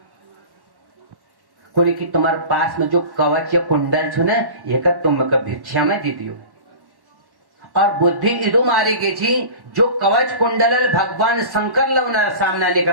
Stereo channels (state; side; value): late; left; 1.1 ms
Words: कुणी की तुम्हारे पास में जो कवच या कुंडल छो ना ये का तुम का भिक्षा में दे दियो। और बुद्धि इदु मारी गई थी जो कवच कुंडल भगवान शंकर लवना सामना नहीं